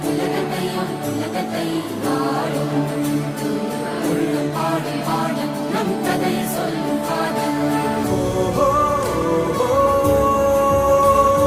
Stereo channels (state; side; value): identical; both; correlation 1.00